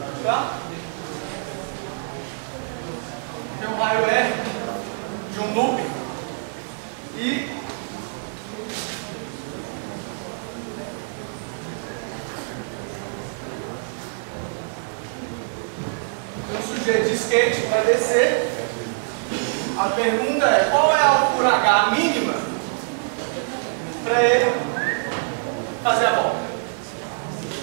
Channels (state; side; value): silent; left; digital silence